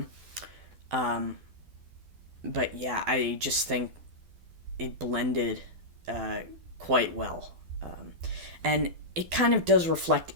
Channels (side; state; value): left; late; 12 ms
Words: But yeah, I just think it blended quite well. And it kind of does reflect